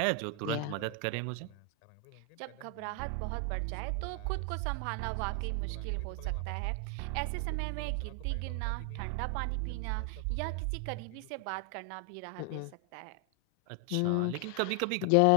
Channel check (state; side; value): different; both; correlation 0.00